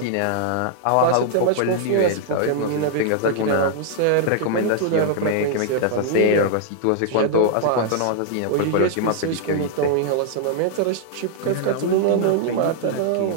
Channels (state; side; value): different; both; correlation -0.01